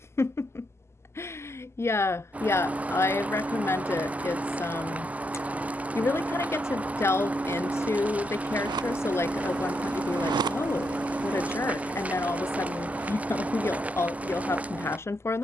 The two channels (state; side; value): normal; both; correlation 0.80